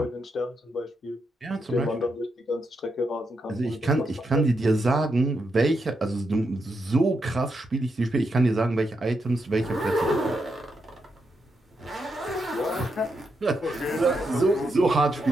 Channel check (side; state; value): both; normal; correlation 0.83